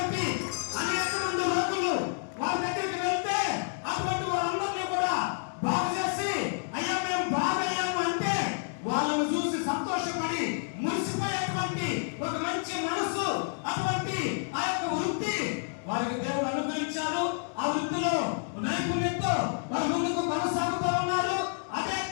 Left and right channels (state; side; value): silent; right; 58 dB below the other